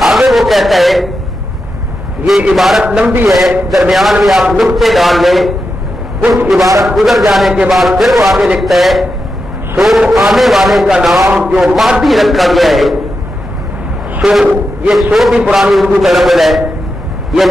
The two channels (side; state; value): both; normal; correlation 0.88